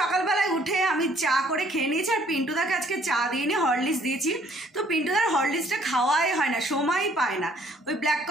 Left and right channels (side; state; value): both; normal; correlation 0.61